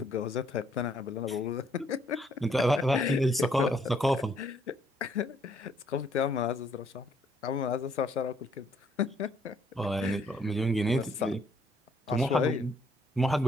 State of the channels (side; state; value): both; normal; correlation 0.68